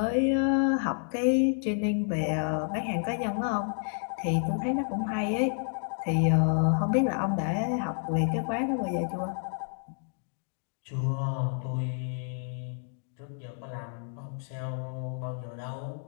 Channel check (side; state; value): right; silent; 58 dB below the other